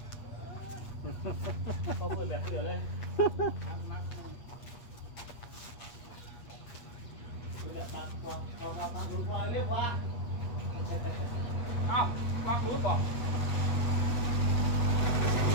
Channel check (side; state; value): right; late; 8.4 ms